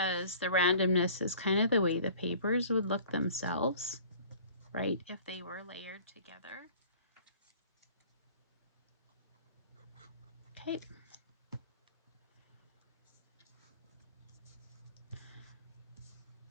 the randomness is kind of the way the papers would look themselves, right, if they were layered together. Okay.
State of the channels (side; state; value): both; inverted; correlation -0.48